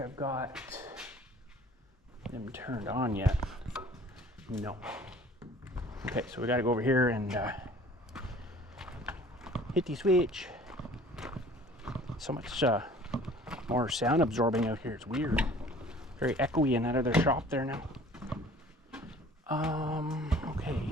got them turned on yet. No. Okay, so we got to go over here and hit the switch. So much more sound absorbing out here. It's weird. Very echoey in that other shop there now. Okay.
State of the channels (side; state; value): both; normal; correlation 0.49